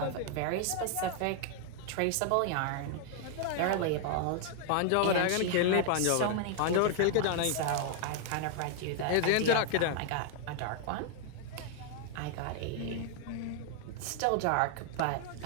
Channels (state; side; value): different; both; correlation 0.00